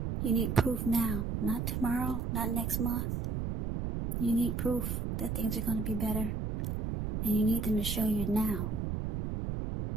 You need proof now, not tomorrow, not next month. You need proof that things are going to be better. And you need them to show you now.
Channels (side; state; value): right; noise; rumble, 2 dB below the sound